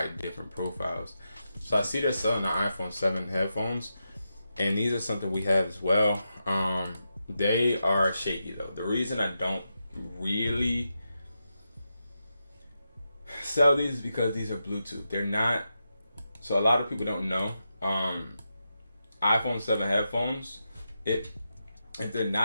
different profiles. So I see they're selling the iPhone 7 headphones, and these are something we have as well. They are shaky though. The reason I don't really sell these is because these are Bluetooth. They're not, so a lot of people don't know. iPhone 7 headphones, if they're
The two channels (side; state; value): both; inverted; correlation -0.87